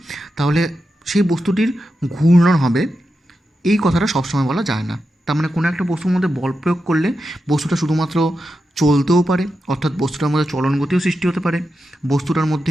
তাহলে সেই বস্তুটির ঘূর্ণন হবে, এই কথাটা সবসময় বলা যায় না। তার মানে কোনো একটা বস্তুর মধ্যে বল প্রয়োগ করলে বস্তুটা শুধুমাত্র চলতেও পারে, অর্থাৎ বস্তুটার মধ্যে চলন গতিও সৃষ্টি হতে পারে, বস্তুটার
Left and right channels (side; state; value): both; normal; correlation 0.89